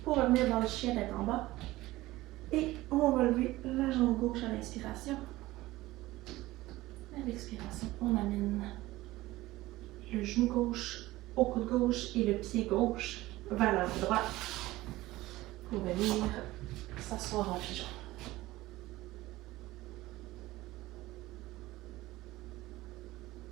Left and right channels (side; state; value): left; quieter; 17.9 dB